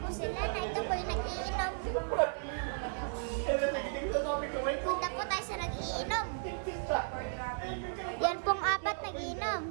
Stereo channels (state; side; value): silent; left; digital silence